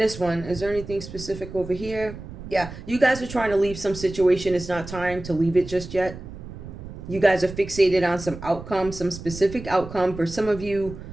one, is there anything specific over here? Yeah, you guys are trying to leave some situation. It's not time to leave it just yet. You guys are fixated on some outcome, some specific outcome. For some of you,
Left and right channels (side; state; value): right; noise; rumble, 12 dB below the sound